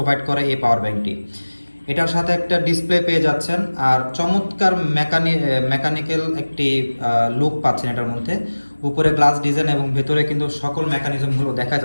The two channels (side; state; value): both; inverted; correlation -1.00